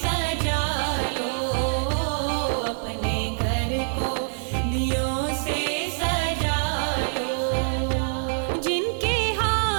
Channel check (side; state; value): left; silent; 56 dB below the other